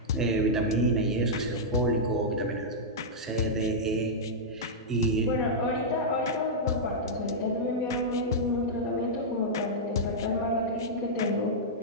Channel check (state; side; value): normal; both; correlation -0.08